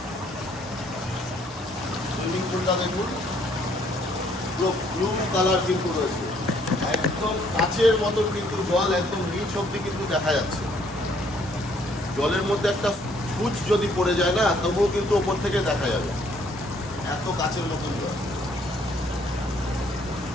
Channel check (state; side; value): normal; both; correlation 0.65